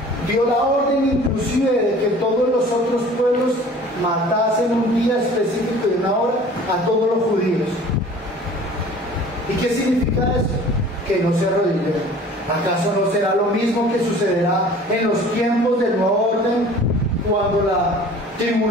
Dio la orden inclusive de que todos los otros pueblos matasen un día específico y una hora a todos los judíos. ¿Y qué significa eso? Que no se arrodillen. ¿Acaso no será lo mismo que sucederá en los tiempos del nuevo orden, cuando la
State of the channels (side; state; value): both; normal; correlation 0.47